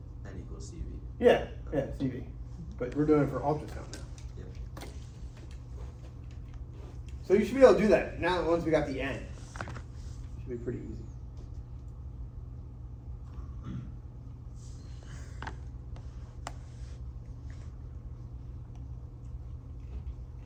N equals CV. Yeah, CV. But we're doing it for ultrasound now. Yeah. So you should be able to do that now once we got the n. Should be pretty easy.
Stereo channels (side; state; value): both; identical; correlation 1.00